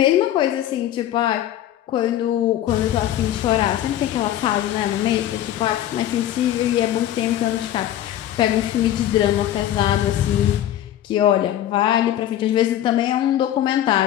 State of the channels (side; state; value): right; quieter; 12.2 dB